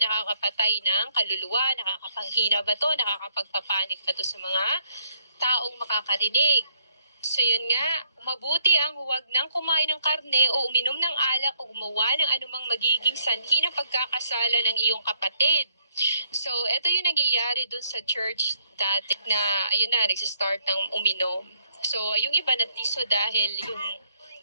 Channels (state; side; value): inverted; both; correlation -0.69